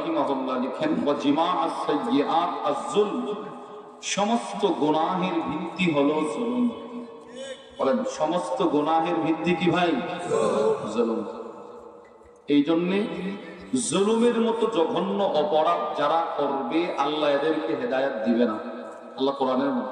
লিখেন, ওয়া জিমাআস সাইয়্যাত আয-যুলম, সমস্ত গুনাহের ভিত্তি হলো জুলুম। বলেন সমস্ত গুনাহের ভিত্তি কি ভাই? জুলুম। এই জন্যে জুলুমের মতো জঘন্য অপরাধ যারা করবে, আল্লাহ এদেরকে হেদায়েত দিবে না। আল্লাহ কোরআনের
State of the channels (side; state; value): both; identical; correlation 1.00